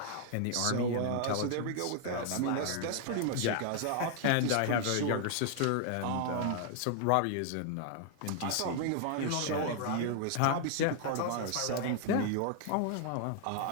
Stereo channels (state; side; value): different; both; correlation 0.00